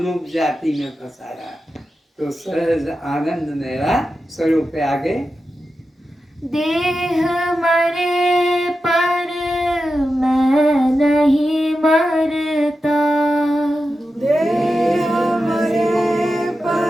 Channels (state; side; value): normal; both; correlation 0.91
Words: जाति में फंसाया। तो सहज आनंद मेरा स्वरूप है। आगे देह मरे पर मैं नहीं मरता, देह मरे